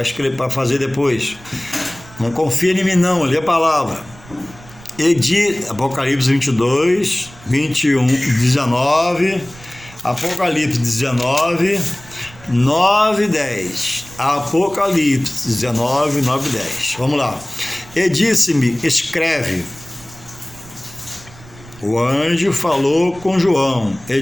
escrever, para fazer depois. Não confia em mim não, lê a palavra. Apocalipse 22, 21, 19, Apocalipse 19, 9 e 10. Apocalipse 19, 9 e 10. Vamos lá. E disse-me, escreve. O anjo falou com João. E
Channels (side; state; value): right; noise; rumble, 21 dB below the sound